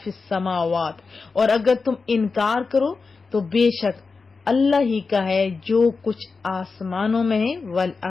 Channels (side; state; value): right; quieter; 4.5 dB